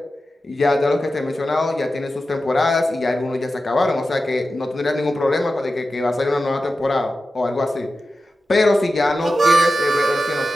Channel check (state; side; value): normal; both; correlation 0.93